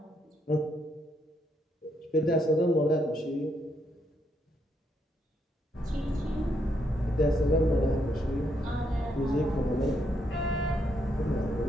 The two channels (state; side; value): normal; both; correlation 0.76